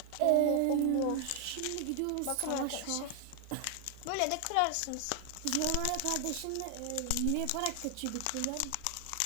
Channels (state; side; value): different; both; correlation 0.00